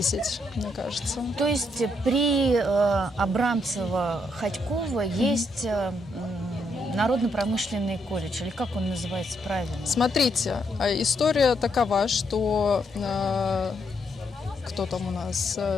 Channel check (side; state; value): both; normal; correlation 0.76